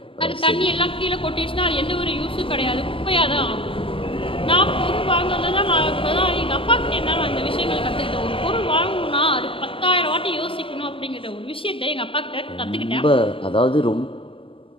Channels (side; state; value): right; late; 0.25 ms